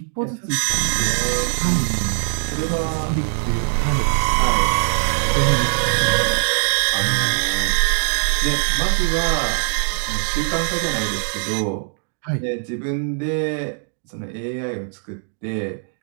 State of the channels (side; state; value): left; silent; digital silence